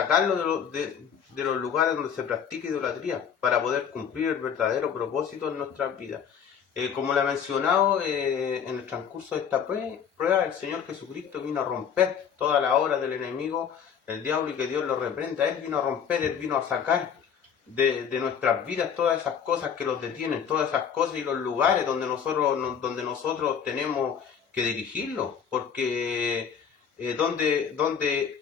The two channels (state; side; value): quieter; right; 7.5 dB